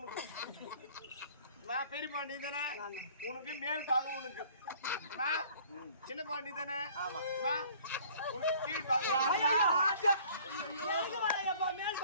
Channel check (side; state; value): both; inverted; correlation -0.53